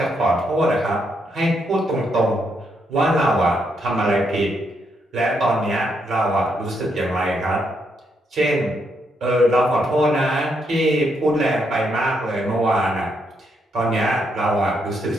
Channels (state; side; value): normal; both; correlation 0.77